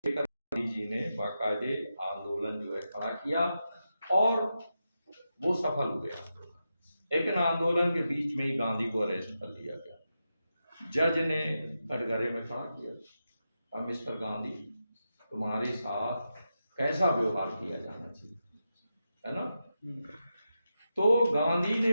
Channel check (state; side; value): inverted; both; correlation -0.88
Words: गांधी जी ने बाकायदे आंदोलन जो है खड़ा किया और वो सफल हुए आंदोलन। लेकिन आंदोलन के बीच में ही गांधी को अरेस्ट कर लिया गया। जज ने कटघरे में खड़ा किया, अब मिस्टर गांधी तुम्हारे साथ कैसा व्यवहार किया जाना चाहिए, है ना। तो गांधी